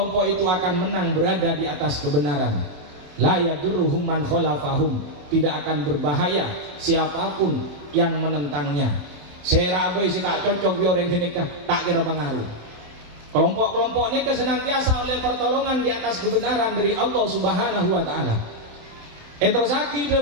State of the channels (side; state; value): left; late; 27 ms